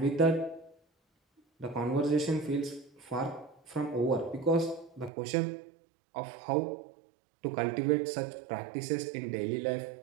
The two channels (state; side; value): drops out; left; at 5.1 s